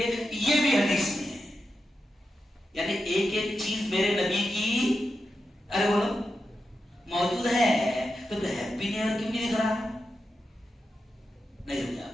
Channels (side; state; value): both; normal; correlation 0.89